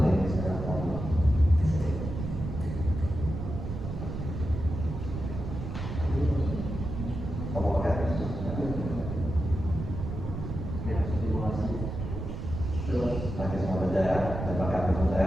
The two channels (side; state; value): right; noise; rumble, 6 dB below the sound